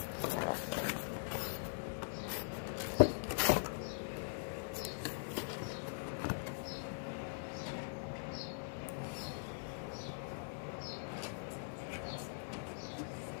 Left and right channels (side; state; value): right; silent; digital silence